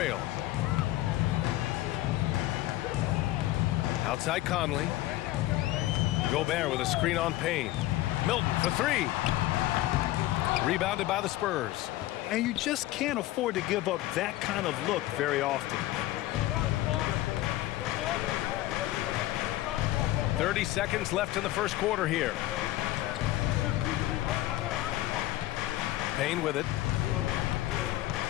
Outside Conley. Gobert with a screen on Payne. Milton for three. Rebounded by the Spurs. And you just can't afford to give up that kind of look very often. 30 seconds left in the first quarter here. Payne with it.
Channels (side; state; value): right; quieter; 16.0 dB